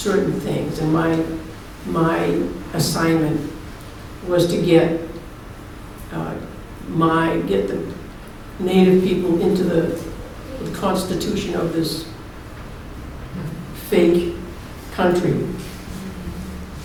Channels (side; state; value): both; identical; correlation 1.00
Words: things. And my assignment was to get the Native people into the constitution of this fake country.